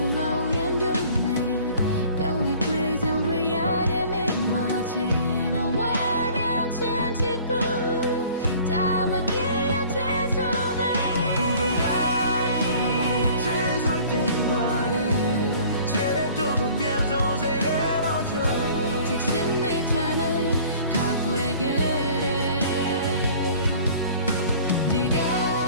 동네 병이 prison 위아래 미마지 나 외면 진지부 담아기야 제소배 우리가 제소된 말에 제를 두고 변소 세워줘 특심 내 찬을 가구에게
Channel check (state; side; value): inverted; both; correlation -0.50